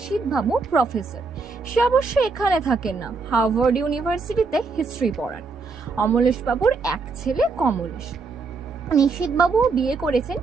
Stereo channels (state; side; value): quieter; left; 4.3 dB